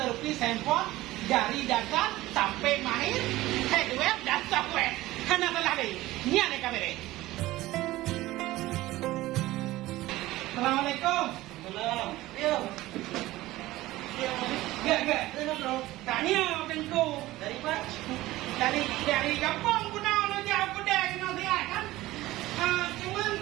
handphone dari dasar sampai mahir hardware dan software. Hana telah deh. Nian yang kami deh. Assalamualaikum. Salam. Yo. Gak. Bro. Tanya tengku. Dari Pak. Dari kampung guna lo jauh pedang no dia kan. Cuman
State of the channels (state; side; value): quieter; left; 17.3 dB